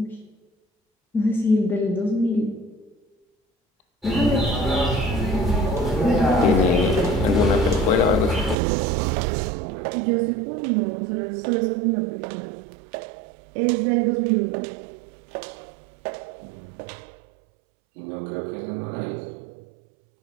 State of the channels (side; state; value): left; drops out; at 8.6 s